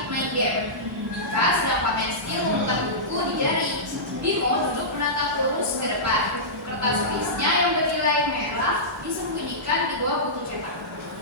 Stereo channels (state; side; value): normal; both; correlation -0.16